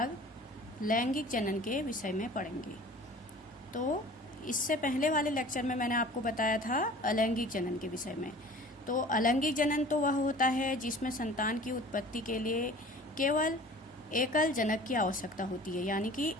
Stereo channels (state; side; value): normal; both; correlation 0.45